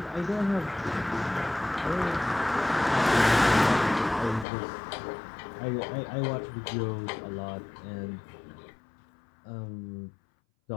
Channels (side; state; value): right; drops out; at 4.5 s